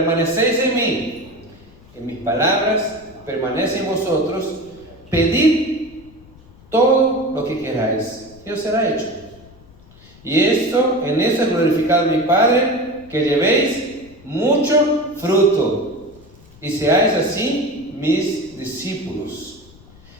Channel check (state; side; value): noise; left; rumble, 24 dB below the sound